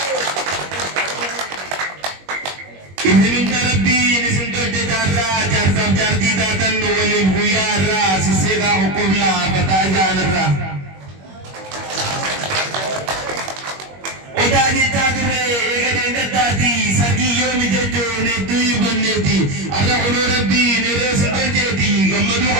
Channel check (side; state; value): left; late; 21 ms